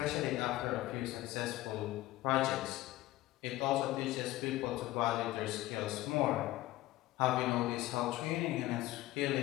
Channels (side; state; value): right; quieter; 16.9 dB